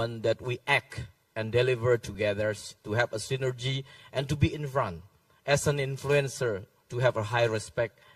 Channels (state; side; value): identical; both; correlation 1.00